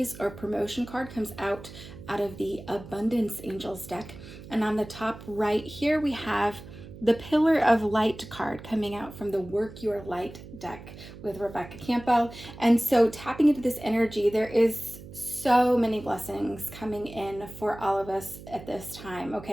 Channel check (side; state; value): right; noise; hum, 15 dB below the sound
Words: or promotion card comes out of the Abundance Angels deck. And on the top right here, we have the Pillar of Light card coming out from the Work Your Light deck with Rebecca Campo. And so tapping into this energy, there is so many blessings coming in for all of us at this time,